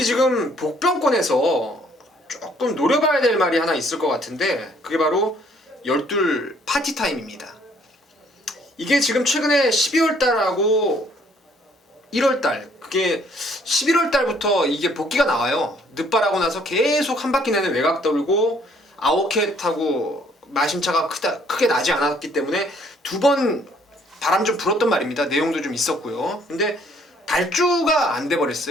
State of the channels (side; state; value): both; normal; correlation 0.63